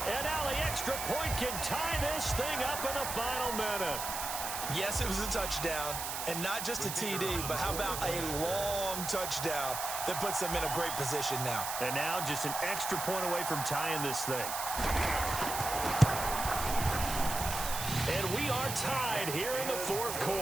And now the extra point can tie this thing up in the final minute. Yes, it was a touchdown. And not just a TD, but how about a long touchdown that puts them in a great position now. And now just an extra point away from tying this thing. And we are tied here in the 4th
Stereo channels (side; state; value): right; noise; hiss, 4 dB below the sound